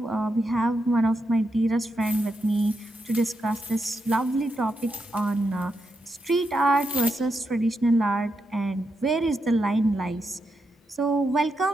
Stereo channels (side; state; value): both; normal; correlation 0.84